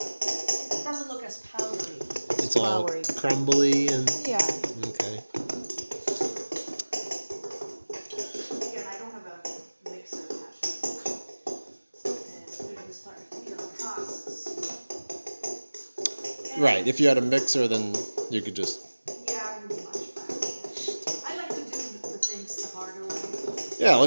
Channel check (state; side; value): inverted; both; correlation -1.00